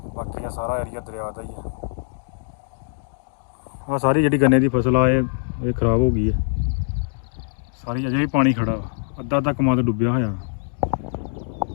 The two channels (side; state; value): right; silent; digital silence